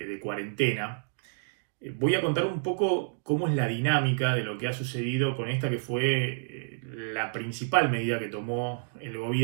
cuarentena. Voy a contar un poco cómo es la dinámica de lo que ha sucedido con esta que fue la principal medida que tomó el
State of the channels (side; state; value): left; silent; digital silence